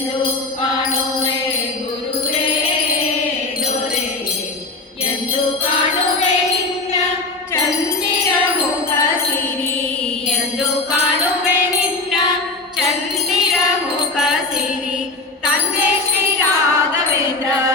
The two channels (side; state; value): right; quieter; 3.4 dB